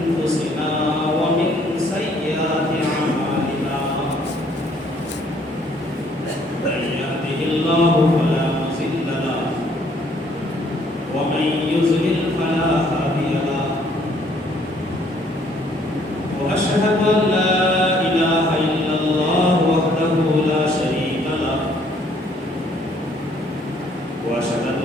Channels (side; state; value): both; normal; correlation 0.63